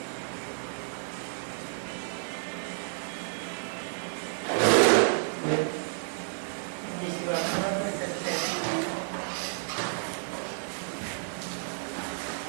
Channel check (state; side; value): silent; left; digital silence